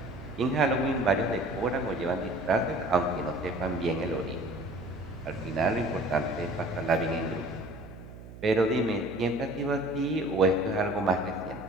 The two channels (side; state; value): right; noise; hum, 15 dB below the sound